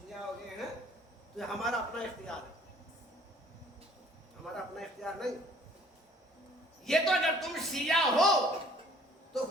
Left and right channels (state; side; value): normal; both; correlation 0.56